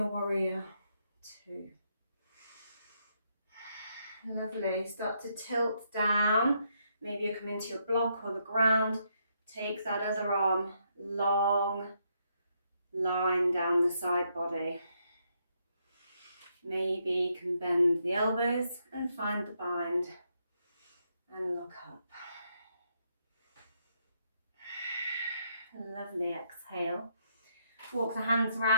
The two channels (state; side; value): inverted; both; correlation -0.76